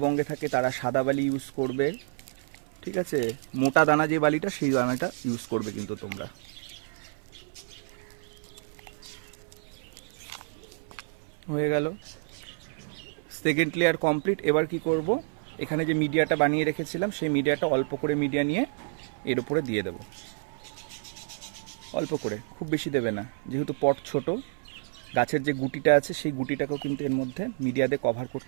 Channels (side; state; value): left; silent; 56 dB below the other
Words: থাকে তারা সাদা বালি ইউজ করবে, ঠিক আছে, মোটা দানা যে বালিটা সেই দানাটা ইউজ করবে কিন্তু তোমরা। হয়ে গেল সেকেন্ড লেয়ার কমপ্লিট। এবার কি করব, এখানে যে মিডিয়াটা বানিয়ে রেখেছিলাম সেই মিডিয়াটা অল্প করে মিডিয়া নিয়ে এর উপরে দিয়ে দেব, অল্প করে, খুব বেশি দেবে না, যেহেতু পট ছোট। গাছের যে গুটিটা আছে সেই গুটিটাকেও কিন্তু এর মধ্যে মিডিয়া দিয়ে কভার